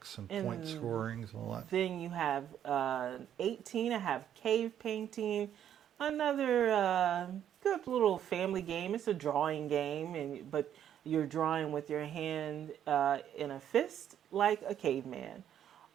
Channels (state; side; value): quieter; left; 10.0 dB